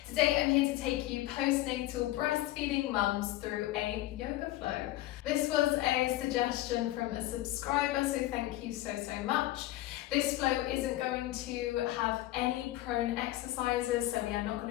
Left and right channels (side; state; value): right; quieter; 16.1 dB